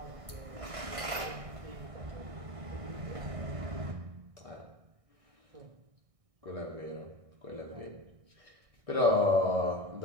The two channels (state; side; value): late; left; 1.6 ms